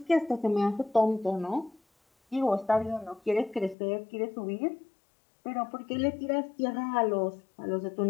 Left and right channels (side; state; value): right; drops out; at 3.8 s